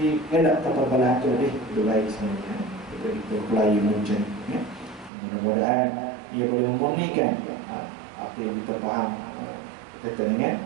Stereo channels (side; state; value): left; drops out; at 5.1 s